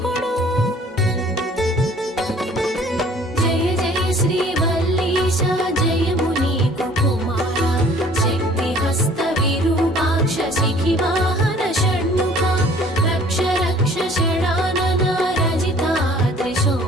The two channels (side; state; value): both; normal; correlation 0.53